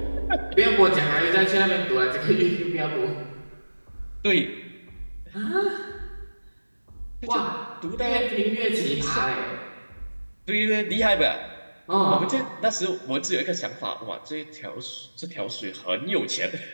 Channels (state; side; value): inverted; both; correlation -1.00